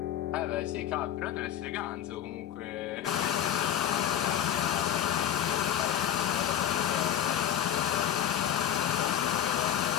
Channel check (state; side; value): quieter; right; 10.5 dB